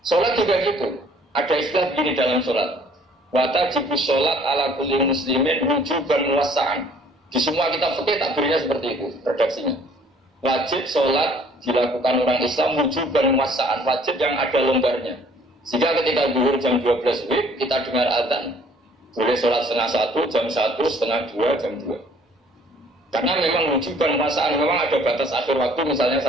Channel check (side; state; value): both; normal; correlation 0.57